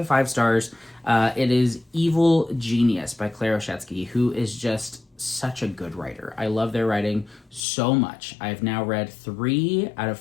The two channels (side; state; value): right; drops out; at 7.7 s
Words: 5 stars. It is Evil Genius by Claire Oshetsky, who is just such a good writer. I love their writing so much. I've now read 3 out of